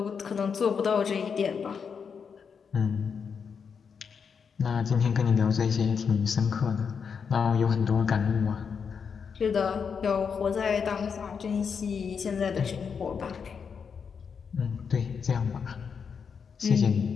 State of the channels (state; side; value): quieter; right; 6.3 dB